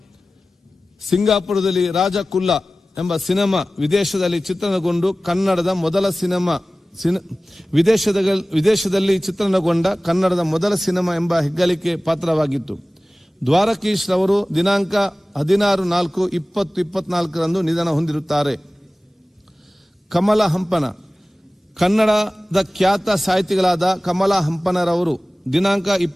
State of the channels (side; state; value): both; normal; correlation 0.97